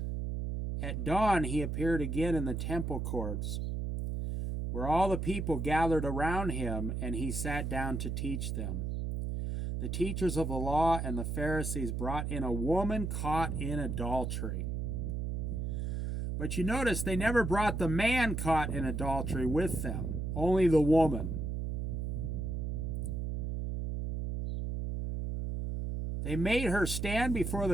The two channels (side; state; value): right; noise; hum, 2 dB below the sound